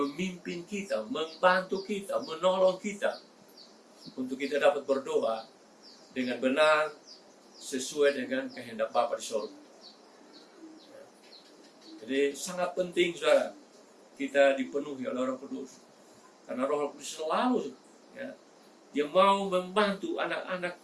kita, membantu kita, menolong kita untuk kita dapat berdoa dengan benar sesuai dengan kehendak Bapa di surga. Jadi sangat penting, saudara, kita dipenuhi oleh Roh Kudus, karena Roh Kudus selalu, ya, dia mau membantu anak-anak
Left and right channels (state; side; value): identical; both; correlation 1.00